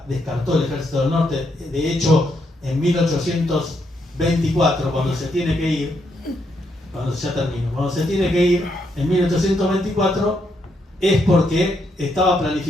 descartó el ejército del norte. De hecho, en 1824, cuando se tiene que ir, cuando se tiene que ir en 1824, es porque estaba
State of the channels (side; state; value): both; normal; correlation 0.77